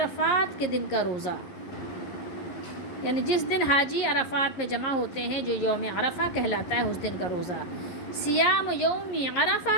کے دن کا روزہ، یعنی جس دن حاجی عرفات میں جمع ہوتے ہیں جو یوم عرفہ کہلاتا ہے، اس دن کا روزہ۔ سیام یوم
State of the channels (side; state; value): right; late; 11 ms